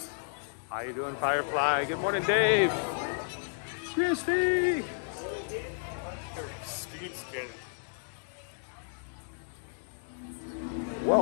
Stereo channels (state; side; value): silent; right; digital silence